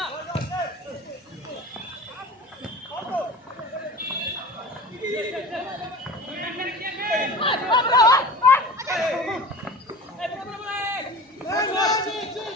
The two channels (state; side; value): normal; both; correlation 0.36